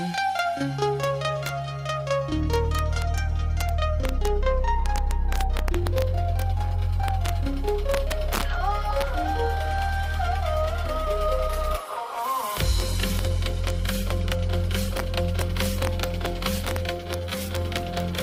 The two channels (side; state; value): both; identical; correlation 1.00